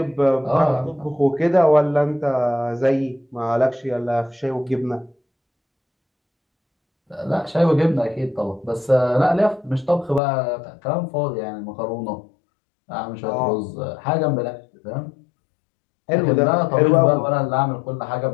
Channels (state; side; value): drops out; right; at 10.2 s